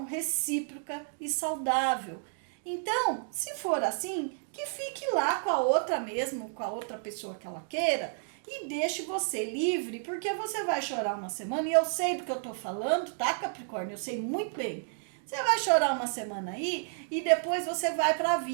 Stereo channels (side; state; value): left; silent; digital silence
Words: recíproca e saudável. Então, se for assim, que fique lá com a outra mesmo, com a outra pessoa que ela queira, e deixe você livre, porque você vai chorar uma semana, e eu sei do que eu tô falando, tá, Capricórnio? Eu sei muito bem. Você vai chorar uma semana aí, e depois você vai pra